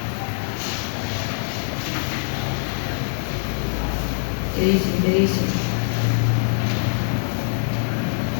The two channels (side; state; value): right; silent; digital silence